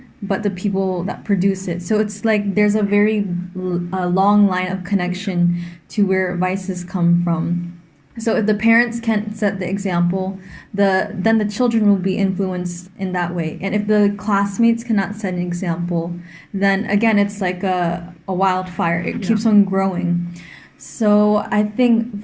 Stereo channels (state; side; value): identical; both; correlation 1.00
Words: but the people that produce it. So it's like there's a very long line of connection to where vices come from. So if the parents can't set the example, then the children will be influenced in that way. And if the classmates cannot set an example, then again it's like a wildfire. It keeps on growing. So I think